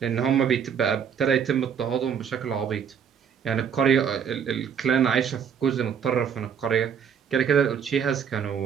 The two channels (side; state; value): left; quieter; 7.6 dB